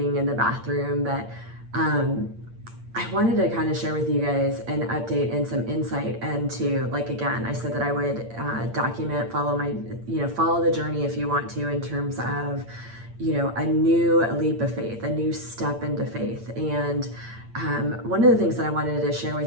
in the bathroom, but I wanted to kind of share with you guys an update and some insight into, like, again, I said that I would document, follow the journey if you want to, in terms of, a new leap of faith, a new step into faith. And one of the things that I wanted to share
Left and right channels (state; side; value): late; left; 8.7 ms